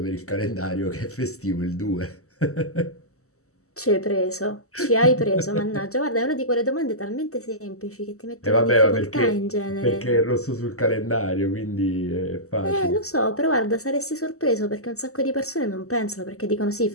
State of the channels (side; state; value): right; late; 0.64 ms